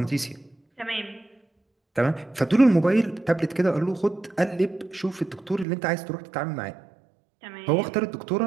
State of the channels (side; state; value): left; drops out; at 5.7 s